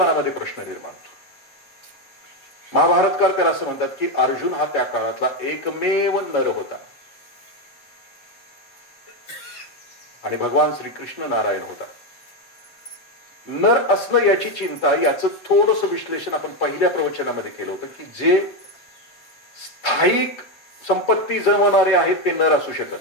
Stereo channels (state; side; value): late; right; 7.3 ms